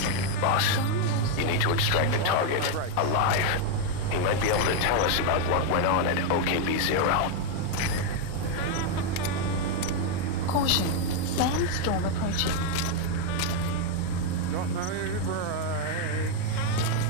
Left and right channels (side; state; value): both; different; correlation 0.01